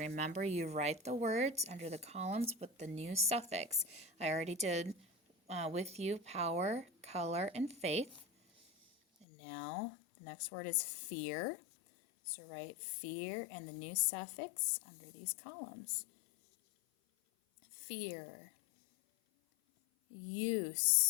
you write the words under the columns with the new suffix. I already did with you power, color, and faith. And now the next word is fear. So write fear and the new suffix under these columns. Fear.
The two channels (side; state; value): right; drops out; at 9.2 s